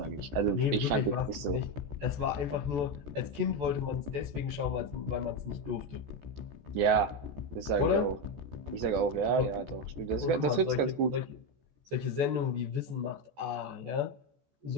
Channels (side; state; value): left; late; 14 ms